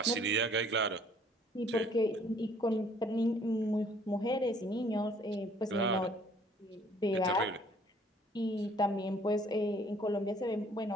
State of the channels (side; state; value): both; normal; correlation 0.59